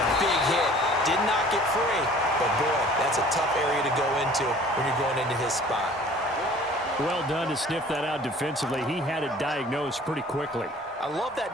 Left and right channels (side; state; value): both; normal; correlation 0.50